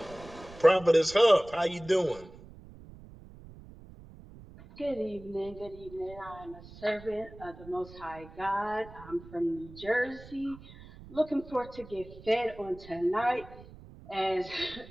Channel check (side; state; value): right; noise; rumble, 18 dB below the sound